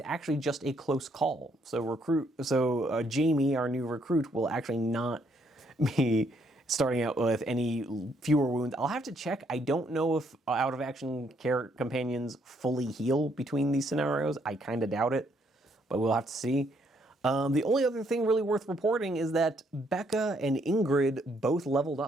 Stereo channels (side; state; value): both; normal; correlation 0.71